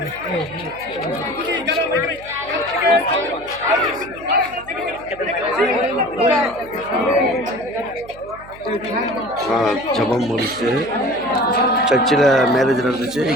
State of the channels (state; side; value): noise; right; hum, 21 dB below the sound